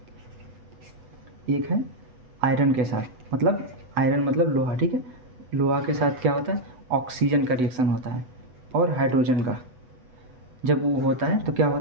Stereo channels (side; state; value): left; late; 8.0 ms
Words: एक है आयरन के साथ, मतलब आयरन मतलब लोहा, ठीक है। लोहा के साथ क्या होता है? ऑक्सीजन का रिएक्शन होता है और हाइड्रोजन का। जब वो होता है तो क्या